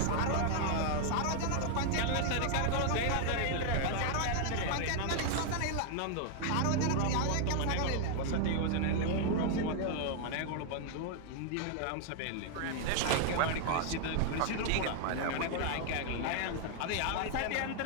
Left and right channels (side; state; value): both; different; correlation 0.00